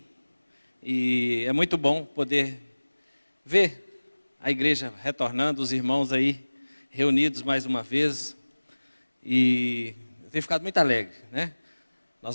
E é muito bom poder ver a igreja retornando, os irmãos aí reunidos mais uma vez. E eu tenho ficado muito alegre, né? Nós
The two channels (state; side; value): inverted; both; correlation -1.00